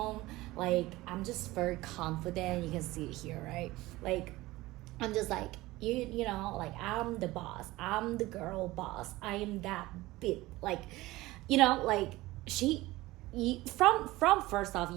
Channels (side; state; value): left; quieter; 18.9 dB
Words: Like I'm just very confident. You can see it here, right? Like I'm just like you know, like I'm the boss, I'm the girl boss, I am that bit, like, you know, like from first off,